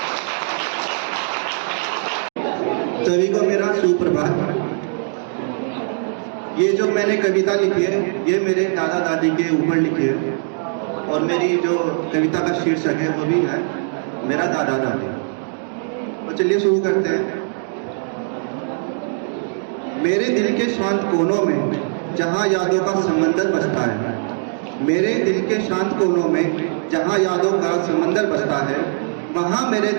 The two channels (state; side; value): silent; left; digital silence